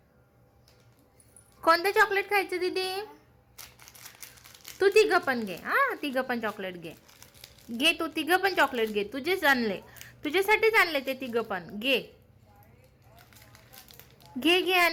कोणतं चॉकलेट खायचं दीदी? तू तिघं पण घे. हां, तिघं पण चॉकलेट घे. घे तू तिघं पण चॉकलेट घे. तुझेच आणले, तुझ्यासाठीच आणले ते तिघं पण. घे घे घे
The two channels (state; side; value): identical; both; correlation 1.00